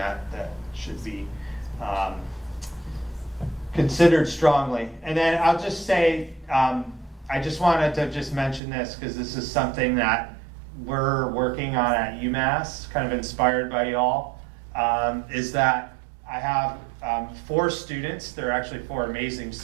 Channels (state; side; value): drops out; left; at 8.6 s